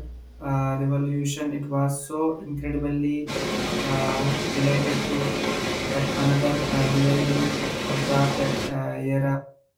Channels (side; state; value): both; identical; correlation 1.00